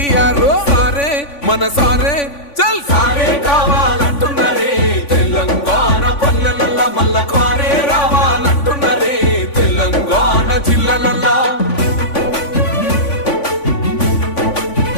సారే మన సారే చల్ సారే కావాలంటున్నరే తెలంగాణ పల్లెలల్లా మల్ల కారే రావాలంటున్నరే తెలంగాణ జిల్లాలల్లా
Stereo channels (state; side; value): late; right; 3.5 ms